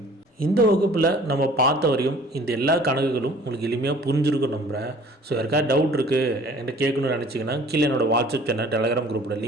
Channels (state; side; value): normal; both; correlation 0.51